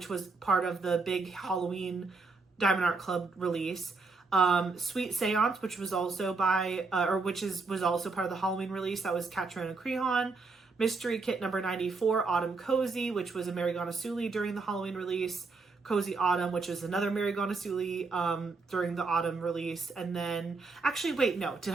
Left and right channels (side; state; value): left; quieter; 4.1 dB